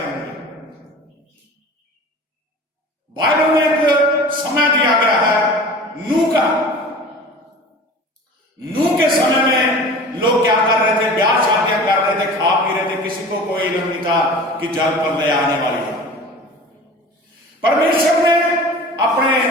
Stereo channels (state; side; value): normal; both; correlation 0.39